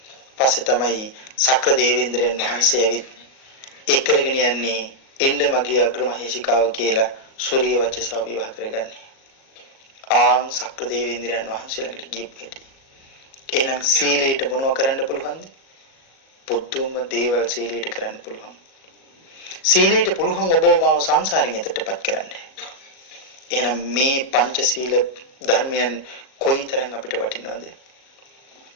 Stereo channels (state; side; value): late; right; 37 ms